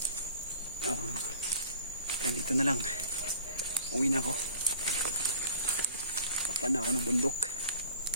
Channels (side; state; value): both; inverted; correlation -0.47